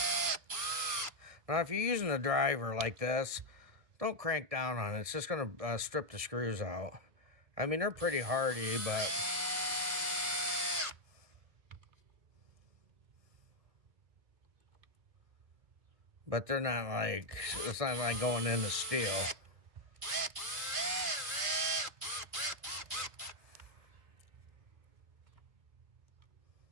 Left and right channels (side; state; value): left; late; 1.7 ms